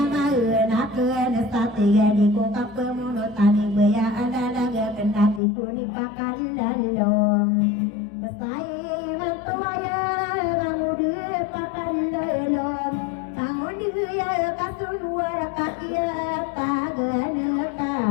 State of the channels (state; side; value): drops out; right; at 5.4 s